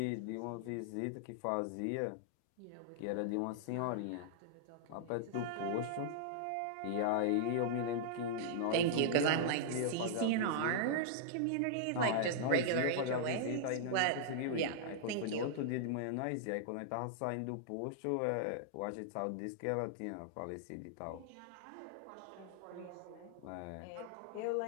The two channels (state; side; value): different; both; correlation -0.01